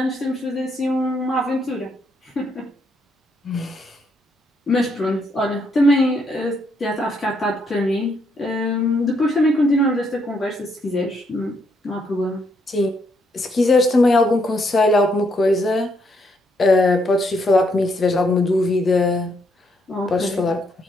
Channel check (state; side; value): normal; both; correlation 0.75